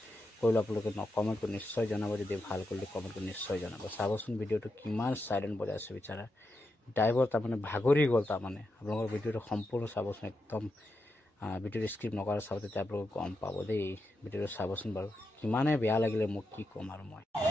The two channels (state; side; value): normal; both; correlation 0.86